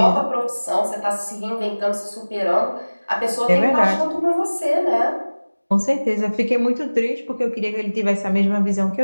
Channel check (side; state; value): both; inverted; correlation -1.00